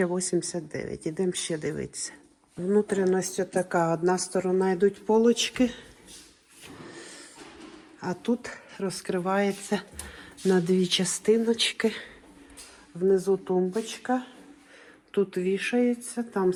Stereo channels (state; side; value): identical; both; correlation 1.00